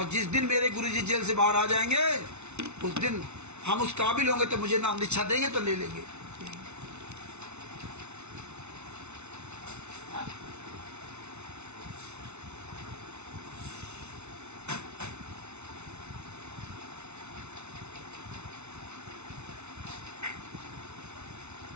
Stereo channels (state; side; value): late; left; 0.81 ms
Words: जिस दिन मेरे गुरुजी जेल से बाहर आ जाएंगे उस दिन हम उस काबिल होंगे तो मुझे नाम दीक्षा देंगे तो ले लेंगे।